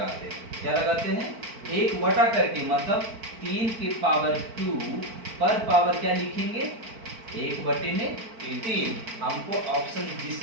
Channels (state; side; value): late; left; 4.5 ms